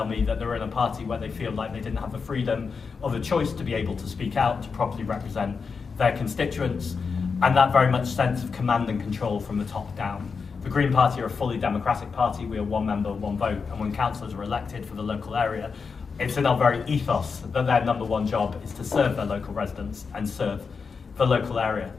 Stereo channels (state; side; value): quieter; right; 5.3 dB